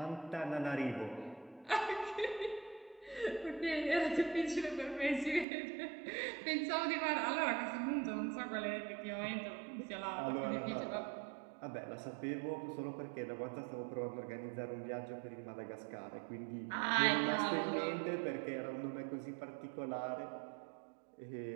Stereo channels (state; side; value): drops out; left; at 5.5 s